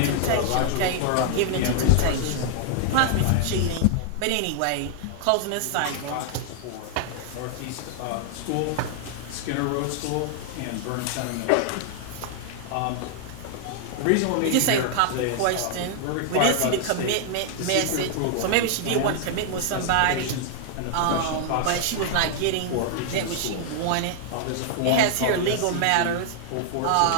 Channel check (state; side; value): different; both; correlation 0.00